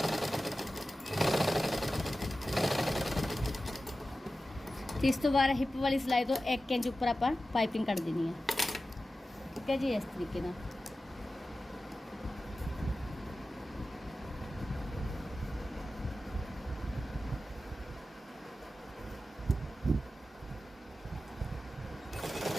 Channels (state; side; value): normal; both; correlation 0.94